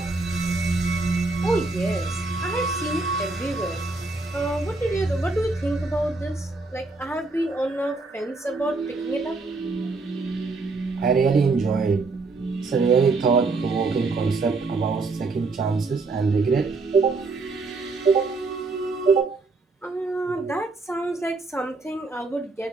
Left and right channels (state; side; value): quieter; left; 3.7 dB